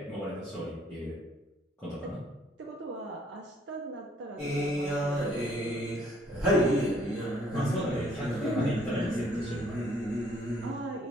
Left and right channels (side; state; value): both; normal; correlation 0.63